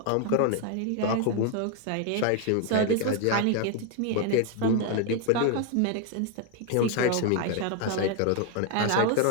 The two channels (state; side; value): different; both; correlation 0.01